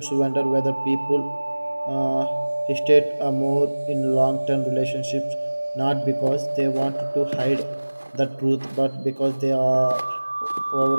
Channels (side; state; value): both; inverted; correlation -1.00